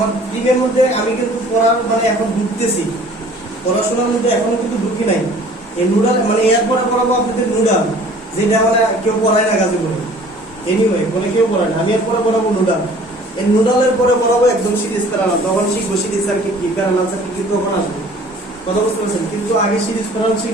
দিনের মধ্যে আমি কিন্তু পড়ার মানে এখন ঢুকতেছি, পড়াশোনার মধ্যে এখনো কিন্তু ঢুকি নাই। এই নুডাল মানে এরপরে পড়াবো আপনাদের নুডাল, যেটা মানে কেউ পড়ায় না কাজে করে, এনিওয়ে বলে কেউ পড়ায় না, আমি এরপরে পড়াবো নুডাল। এই নুডালের পরে পড়াবো একদম সিরিজ প্যারালাল, তখন শিখবো সিরিজ সার্কিট কি, প্যারালাল সার্কিট কিন্তু তখন আসবে। কথা বুঝতে পারছেন? কিন্তু আগে সিরিজ প্যারালাল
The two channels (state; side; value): normal; both; correlation 0.51